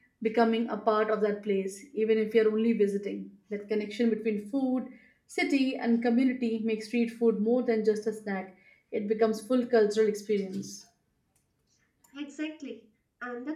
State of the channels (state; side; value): identical; both; correlation 1.00